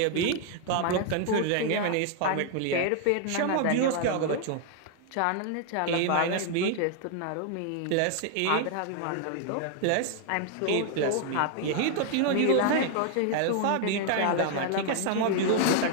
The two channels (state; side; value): different; both; correlation 0.00